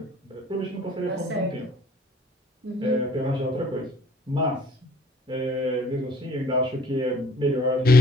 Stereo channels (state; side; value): normal; both; correlation 0.54